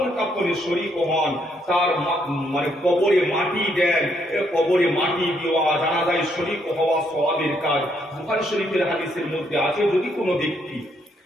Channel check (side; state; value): both; normal; correlation 0.73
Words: কাফনে শরীক হন, তার মানে কবরে মাটি দেন, কবরে মাটি দেওয়া, জানাজায় শরীক হওয়া সওয়াবের কাজ। বুখারী শরীফের হাদিসের মধ্যে আছে, যদি কোনো ব্যক্তি